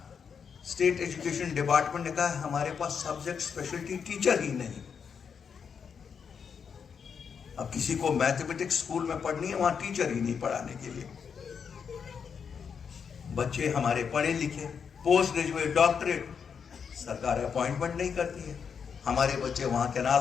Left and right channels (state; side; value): quieter; right; 6.6 dB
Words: स्टेट एजुकेशन डिपार्टमेंट ने कहा हमारे पास सब्जेक्ट स्पेशलिटी टीचर ही नहीं। अब किसी को मैथमेटिक्स स्कूल में पढ़नी है, वहां टीचर ही नहीं पढ़ाने के लिए। बच्चे हमारे पढ़े लिखे, पोस्ट ग्रेजुएट, डॉक्टरेट, सरकार अपॉइंटमेंट नहीं करती है। हमारे बच्चे वहां